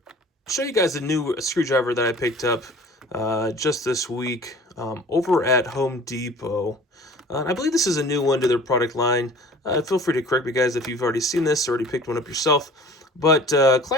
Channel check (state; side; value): normal; both; correlation 0.46